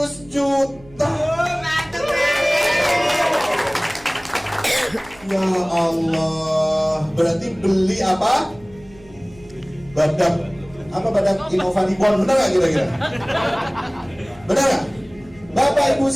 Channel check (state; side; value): noise; right; hum, 24 dB below the sound